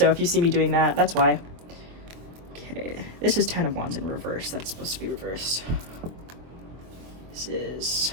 if you see me doing that, that's why. Okay, this is 10 of Wands in reverse. That's supposed to be reversed. This is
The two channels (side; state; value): left; late; 23 ms